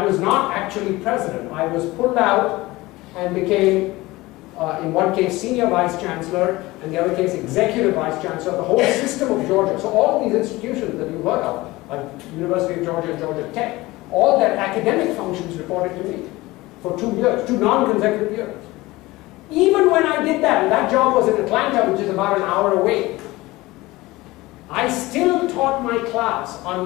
was not actually president. I was pulled out and became, in one case, senior vice chancellor, and the other case, executive vice chancellor, the whole system of Georgia. So all of these institutions that you've heard of, like University of Georgia and Georgia Tech, all their academic functions reported to me for 2 years, 2 non-consecutive years. Even when I did that, and that job was in Atlanta, which is about an hour away, I still taught my class on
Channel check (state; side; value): quieter; right; 19.9 dB